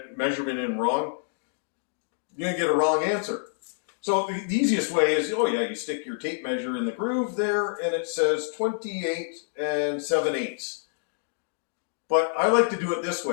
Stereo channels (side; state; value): right; silent; digital silence